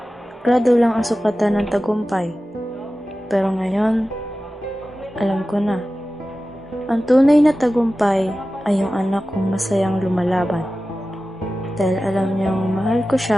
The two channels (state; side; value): normal; both; correlation 0.95